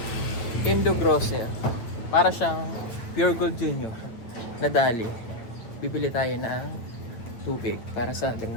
Indo Grosser. Para siyang Pure Gold Junior na dali. Bibili tayo ng tubig para sa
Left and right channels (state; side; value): late; right; 9.1 ms